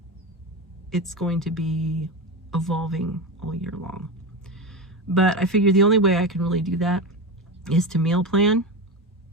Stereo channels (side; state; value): both; normal; correlation 0.20